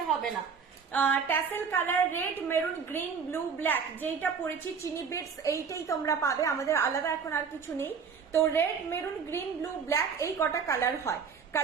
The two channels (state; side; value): quieter; left; 6.1 dB